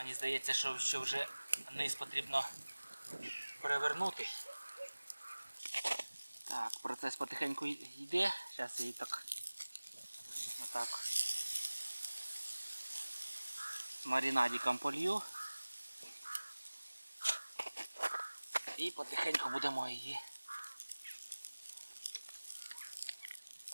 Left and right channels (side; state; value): both; inverted; correlation -1.00